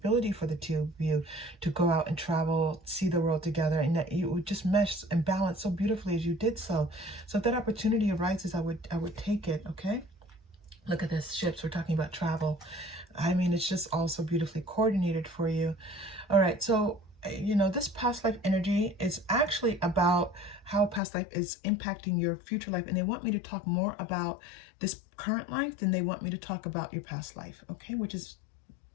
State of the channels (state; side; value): drops out; right; at 21.0 s